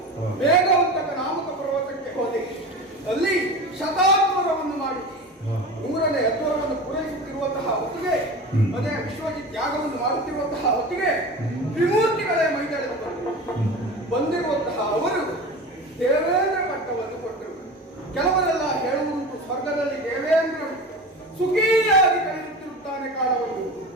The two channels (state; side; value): normal; both; correlation 0.31